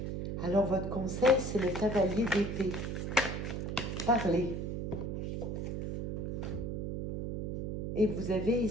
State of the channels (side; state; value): right; noise; hum, 3 dB below the sound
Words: Alors, votre conseil, c'est le cavalier d'épée. Parlez. Et vous avez